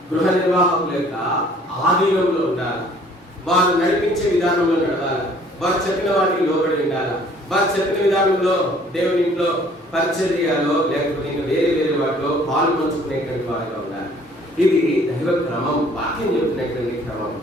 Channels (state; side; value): normal; both; correlation 0.56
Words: గృహ నిర్వాహకుల యొక్క ఆధీనంలో ఉండాలి. వారు నడిపించే విధానంలో నడవాలి. వారు చెప్పిన వాటికి లోబడి ఉండాలి. వారు చెప్పిన విధానంలో దేవుని ఇంట్లో పరిచర్యలో లేకపోతే ఇంకా వేరే వాటిలో పాలు పంచుకునేటువంటి వారిగా ఉండాలి. ఇది దైవ క్రమం, వాక్యం చెప్తున్నటువంటి క్రమం.